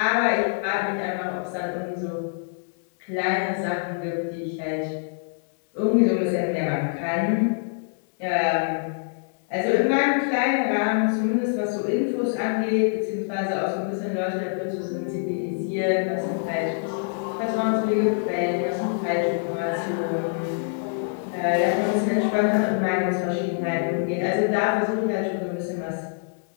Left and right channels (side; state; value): right; silent; digital silence